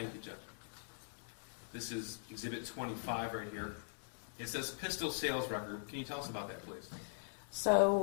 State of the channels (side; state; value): right; silent; digital silence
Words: you, Jeff. This is Exhibit 25 right here. It says pistol sales record. Can you tell us about that, please?